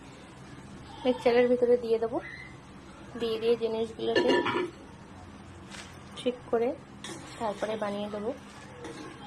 মিক্সচারের ভিতরে দিয়ে দেবো। দিয়ে দিয়ে জিনিসগুলোকে ঠিক করে তারপরে বানিয়ে দেবো।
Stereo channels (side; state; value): both; identical; correlation 1.00